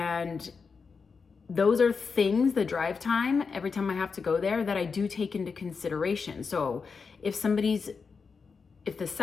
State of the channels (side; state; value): right; quieter; 5.2 dB